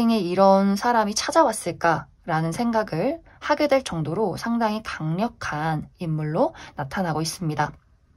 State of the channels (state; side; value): identical; both; correlation 1.00